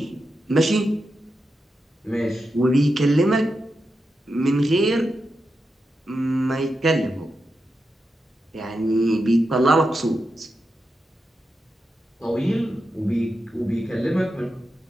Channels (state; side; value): normal; both; correlation 0.88